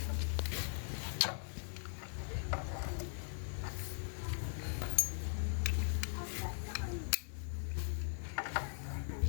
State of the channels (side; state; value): right; silent; digital silence